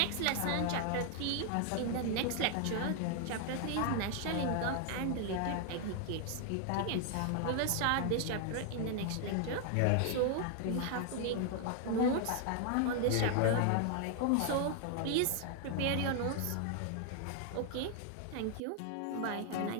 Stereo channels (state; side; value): different; both; correlation 0.00